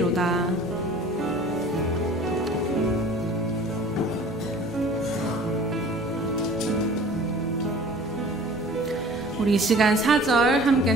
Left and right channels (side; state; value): both; normal; correlation 0.46